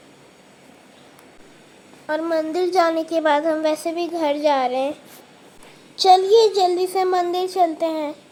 और मंदिर जाने के बाद हम वैसे भी घर जा रहे हैं। चलिए जल्दी से मंदिर चलते हैं।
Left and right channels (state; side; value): identical; both; correlation 1.00